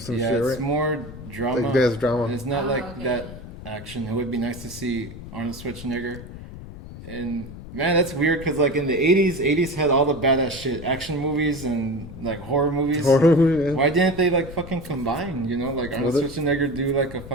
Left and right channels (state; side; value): noise; left; rumble, 13 dB below the sound